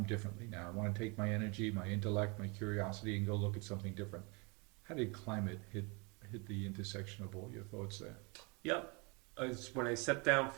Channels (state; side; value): quieter; left; 30.3 dB